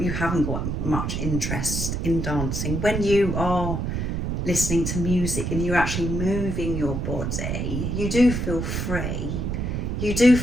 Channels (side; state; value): right; noise; rumble, 1 dB below the sound